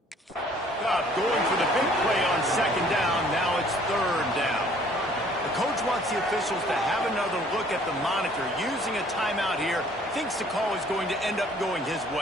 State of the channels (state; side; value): normal; both; correlation 0.57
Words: Going for the big play on 2nd down. Now it's 3rd down. The coach wants the officials to have another look at the monitor. Using a timeout here, thinks the call is going to end up going his